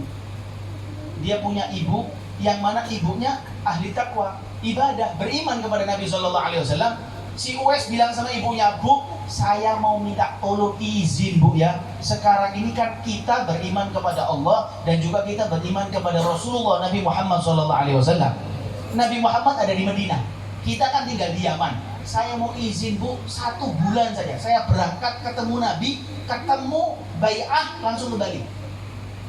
Dia punya ibu yang mana ibunya ahli takwa, ibadah, beriman kepada Nabi Shallallahu Alaihi Wasallam. Si Uwais bilang sama ibunya, "Bu, saya mau minta tolong izin Bu ya. Sekarang ini kan kita beriman kepada Allah dan juga kita beriman kepada Rasulullah Nabi Muhammad Shallallahu Alaihi Wasallam. Nabi Muhammad ada di Madinah, kita kan tinggal di Yaman. Saya mau izin Bu, 1 bulan saja. Saya berangkat ketemu Nabi, ketemu bai'ah langsung kembali.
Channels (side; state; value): both; identical; correlation 1.00